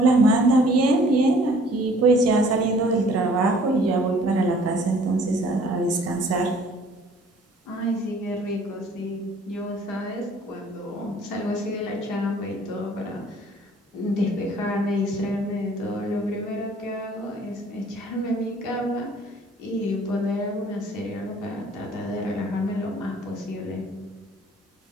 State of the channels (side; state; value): both; normal; correlation 0.55